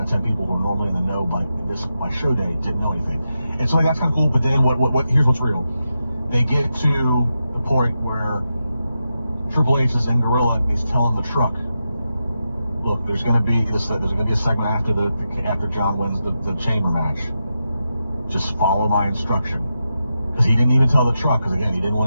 10 people who are normally in the know by show day didn't know anything, and so that's kind of cool. But then here's what's real. They get to the point where Triple H is in Gorilla and he's telling the truck, look, there's going to be a segment after John wins the chamber match. Just follow my instruction. Because he didn't even tell the truck, because again, he didn't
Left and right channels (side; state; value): both; inverted; correlation -0.88